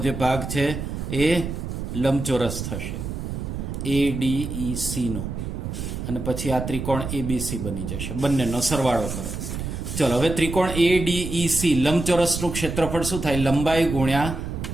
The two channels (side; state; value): right; noise; rumble, 5 dB below the sound